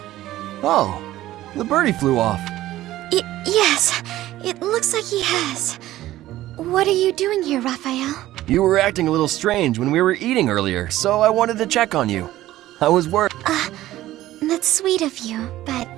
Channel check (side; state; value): left; quieter; 15.0 dB